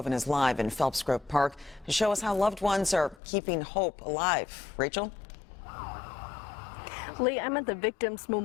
is live in Phelps Grove Park to show us how loved ones are keeping hope alive. Rachel? Lee, I'm at the Victims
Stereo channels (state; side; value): drops out; right; at 3.2 s